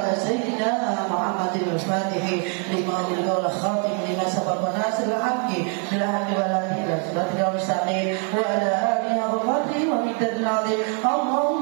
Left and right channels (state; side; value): quieter; left; 38.4 dB